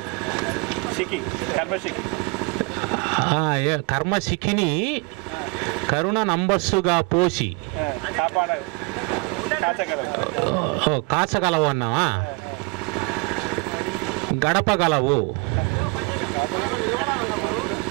సిక్కి కర్మసిక్కి కర్మసిక్కిని కరుణ నంబస్సుగా పోసి కాచగలవు అన్నావా? గడపగలవు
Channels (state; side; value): quieter; left; 29.1 dB